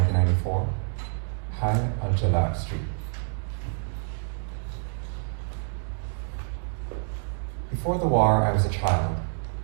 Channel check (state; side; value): silent; left; digital silence